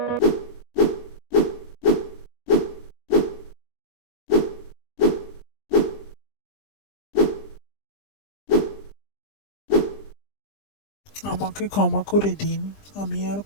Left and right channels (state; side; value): late; right; 20 ms